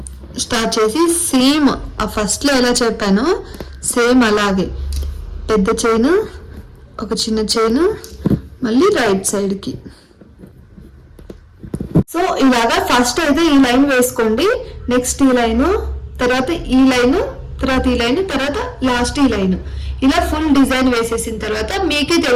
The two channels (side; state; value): both; identical; correlation 1.00